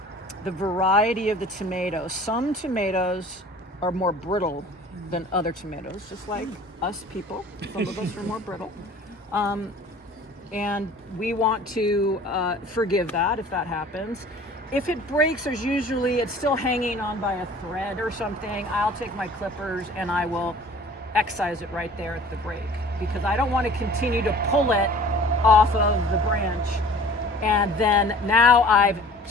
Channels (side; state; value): both; normal; correlation 0.46